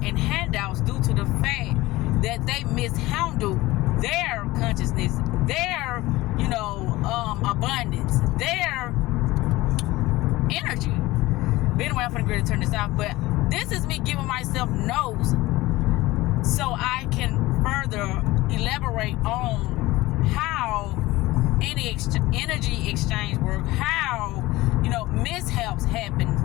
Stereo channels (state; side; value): quieter; right; 19.0 dB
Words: and handouts due to the fact that they mishandled their consciousness, their, abundance, their energy. But anyway, I'm finna turn this off, but this is me giving myself notes so I can further elaborate on how any energy exchange work, how mishaps happen